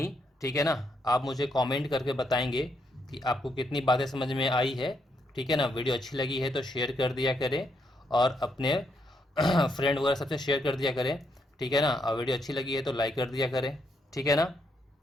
ठीक है ना। आप मुझे कमेंट करके बताएंगे कि आपको कितनी बातें समझ में आई है, ठीक है ना। वीडियो अच्छी लगी है तो शेयर कर दिया करें और अपने फ्रेंड वगैरह सबसे शेयर कर दिया करें, ठीक है ना। और वीडियो अच्छी लगी है तो लाइक कर दिया करें, ठीक है ना।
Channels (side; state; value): both; normal; correlation 0.77